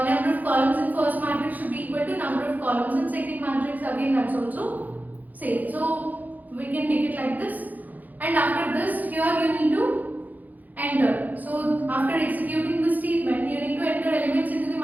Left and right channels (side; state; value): left; late; 0.082 ms